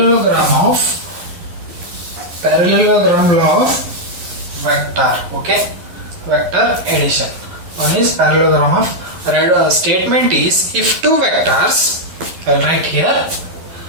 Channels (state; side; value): late; left; 11 ms